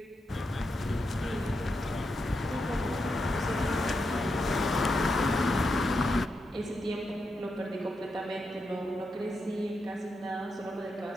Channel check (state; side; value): normal; both; correlation 0.85